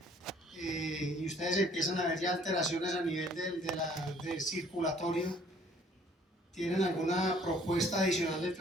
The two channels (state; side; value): normal; both; correlation 0.58